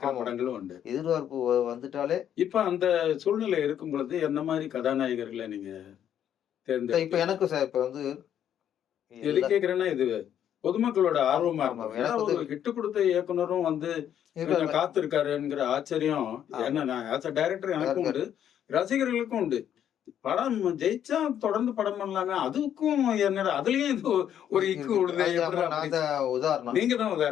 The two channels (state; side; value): quieter; right; 9.9 dB